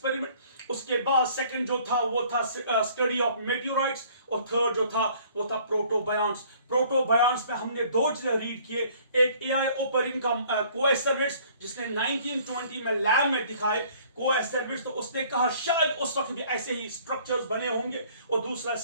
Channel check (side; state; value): both; inverted; correlation -0.56